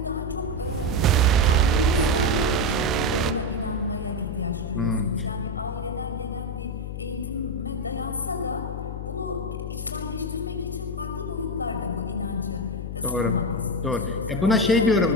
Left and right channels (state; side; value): noise; left; hum, 6 dB below the sound